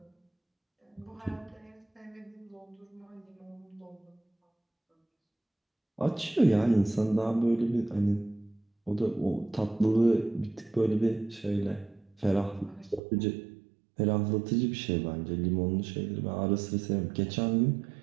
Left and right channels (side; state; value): left; drops out; at 13.0 s